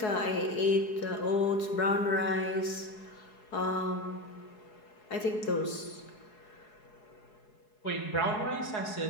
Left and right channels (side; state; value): right; late; 4.7 ms